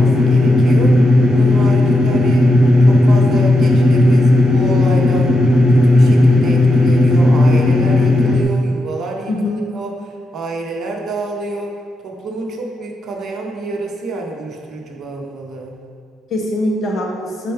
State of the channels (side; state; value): both; normal; correlation 0.85